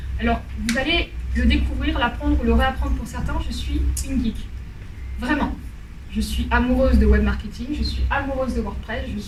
Alors, vous allez le découvrir, l'apprendre ou le réapprendre pour certains, je suis une geek. Vraiment. Je suis amoureuse de web marketing, je suis amoureuse de WordPress,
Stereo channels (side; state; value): both; identical; correlation 1.00